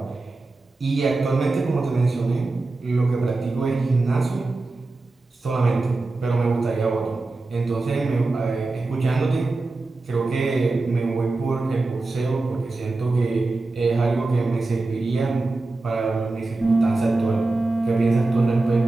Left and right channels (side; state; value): left; quieter; 3.3 dB